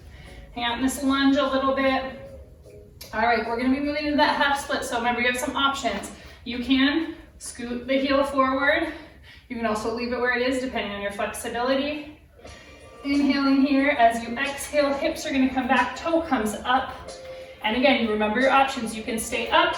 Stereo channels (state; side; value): identical; both; correlation 1.00